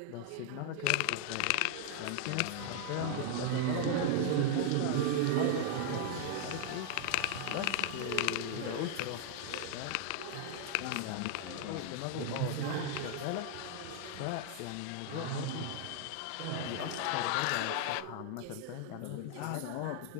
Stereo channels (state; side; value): different; both; correlation 0.00